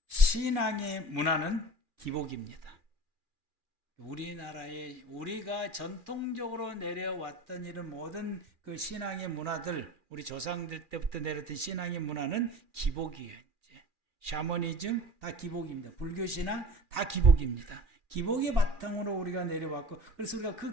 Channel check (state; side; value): late; left; 2.4 ms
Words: 신앙의 문화는 기복입니다. 우리나라에 우리가 전통적으로 내려왔던 이런 모든 그 신앙의 문화들, 우리 조상들 때부터 내려왔던 신앙의 문화는 기복이에요. 샤머니즘 다 기복입니다. 불교신앙 다 기복입니다. 기복의 바탕으로 우리가 내려왔고, 그래서 우리가